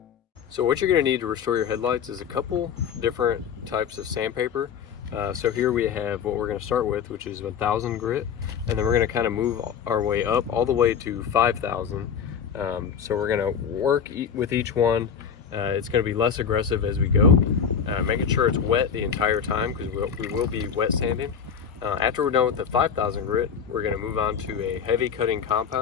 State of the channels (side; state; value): right; quieter; 7.2 dB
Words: So what you're going to need to restore your headlights is a couple different types of sandpaper. So here we have what we're going to start with, which is 1000 grit, and then we're going to kind of move our way up all the way to 5000. So we're going to work with each one. It's going to be less aggressive as we go, making sure it's wet the entire time, because we will be wet sanding. After we're done with the 5000 grit, we're going to move on to a heavy cutting